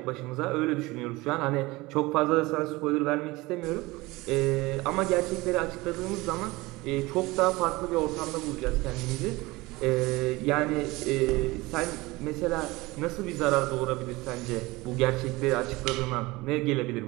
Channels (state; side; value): quieter; left; 21.4 dB